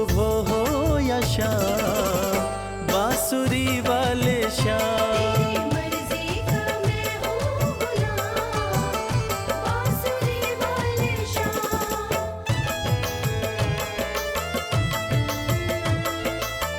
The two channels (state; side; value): identical; both; correlation 1.00